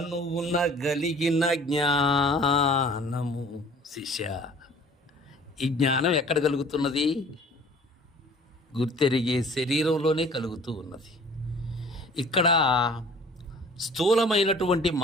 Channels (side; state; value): both; normal; correlation 0.49